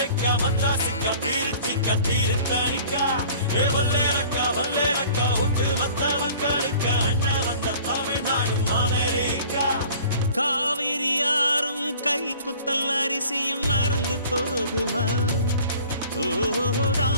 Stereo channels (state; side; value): inverted; both; correlation -0.48